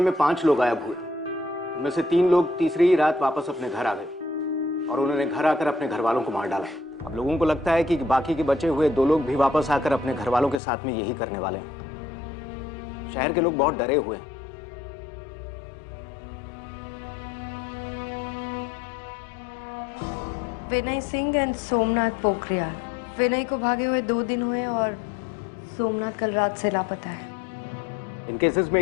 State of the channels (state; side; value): drops out; right; at 10.6 s